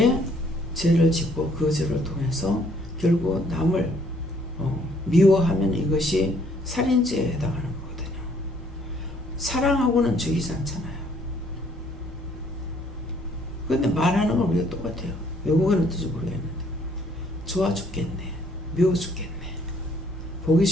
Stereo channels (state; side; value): normal; both; correlation 0.64